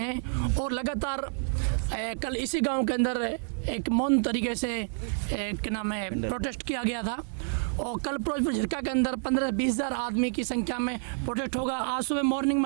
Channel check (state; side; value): silent; left; digital silence